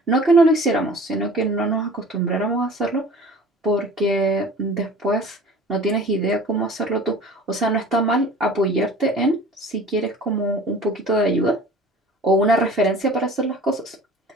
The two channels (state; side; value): normal; both; correlation 0.44